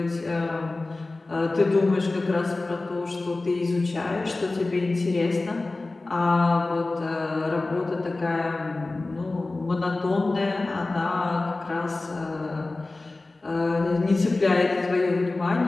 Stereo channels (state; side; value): quieter; right; 3.2 dB